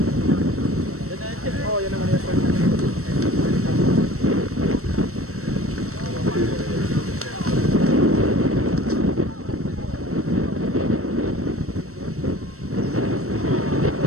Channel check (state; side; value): late; left; 0.64 ms